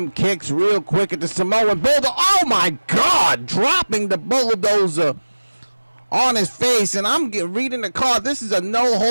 kicks real quick at the Samoan Bulldozer. Oh my God, dropping the Bulldozer on his face. And I'm reading the card. This is a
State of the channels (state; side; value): inverted; both; correlation -1.00